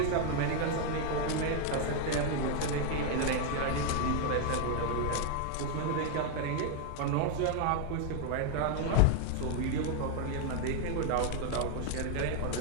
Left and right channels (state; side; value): different; both; correlation 0.01